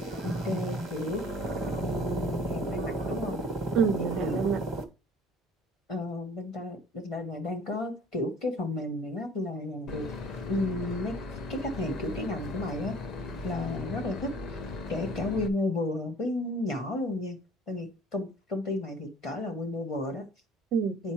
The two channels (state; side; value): normal; both; correlation 0.51